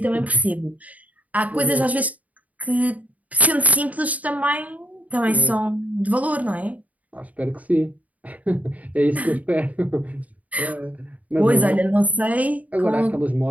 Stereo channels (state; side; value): late; left; 0.072 ms